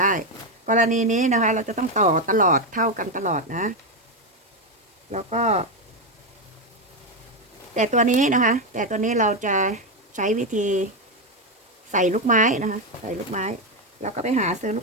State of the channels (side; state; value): both; normal; correlation 0.07